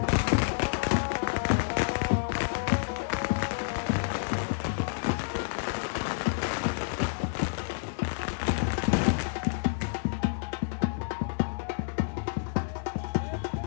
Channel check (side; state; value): right; silent; digital silence